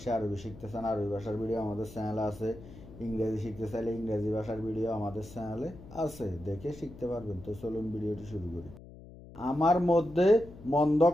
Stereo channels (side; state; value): left; noise; hum, 18 dB below the sound